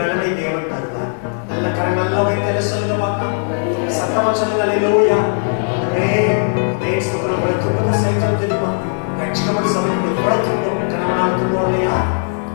தேவன் தருவார். நல்ல கரம் நல்லா வைத்தல சொல்லுங்க பார்க்கலாம். சத்தமா சொல்லுங்க. அல்லேலூயா. ஸ்தோத்திரம். துன்பத்தை சகிக்க தெரியுமா? ரட்சிக்கப்பட்ட சபைக்கு எவ்வளவு துன்பம், கணவனால் துன்பம் இல்லையா,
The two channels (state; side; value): silent; right; digital silence